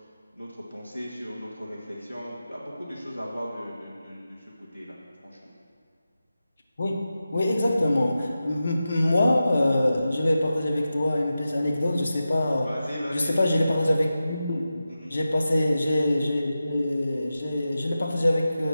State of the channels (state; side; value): inverted; both; correlation -0.92